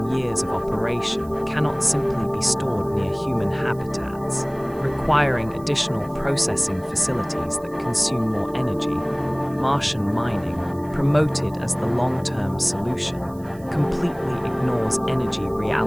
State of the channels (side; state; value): right; noise; hiss, 26 dB below the sound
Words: years of operation cannot simply be stored near human habitats, requiring additional processing facilities that consume more energy. Martian mining, promoted as the long-term solution, completely ignores energy